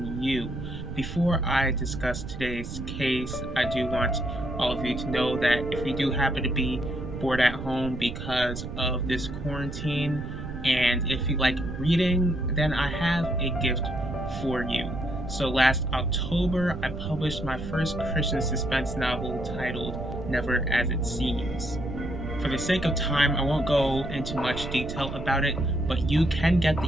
you. Before I discuss today's case, I do want all of you to know that if you do happen to be bored at home because of this quarantine, and if you like reading, then I have a gift for you. So last October, I published my first Christian suspense novel titled Never as It Seems. For the sake of time, I won't go into much detail about it, but you can get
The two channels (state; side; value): noise; right; rumble, 8 dB below the sound